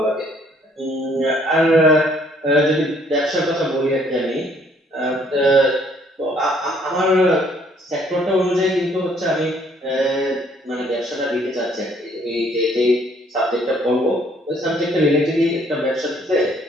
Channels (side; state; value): both; normal; correlation 0.63